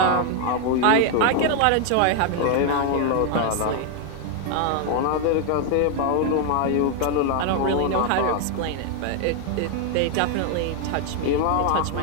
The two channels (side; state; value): both; different; correlation 0.00